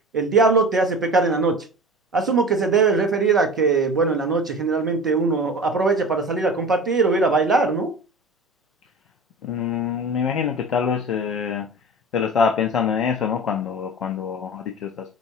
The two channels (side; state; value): both; normal; correlation 0.35